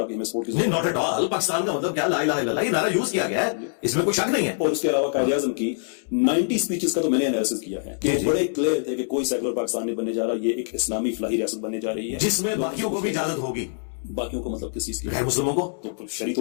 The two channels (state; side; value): silent; right; digital silence